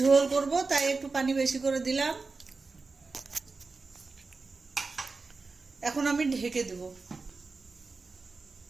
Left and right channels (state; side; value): quieter; left; 4.1 dB